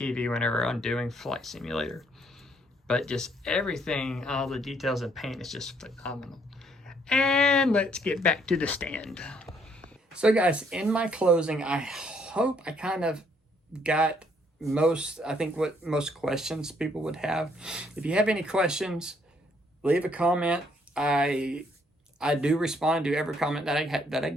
whenever I'm doing Flight Simulator. But just everything, all the details and paint is just phenomenal. And let's get back to the stand. So guys, in my closing, I hope I kind of got what most questions people would have. If you have any questions, leave a comment. I do respond to every comment that I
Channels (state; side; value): normal; both; correlation 0.68